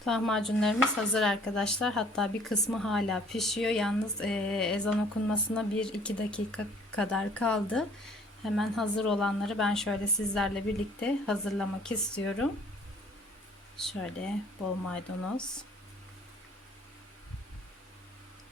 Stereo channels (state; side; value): normal; both; correlation 0.56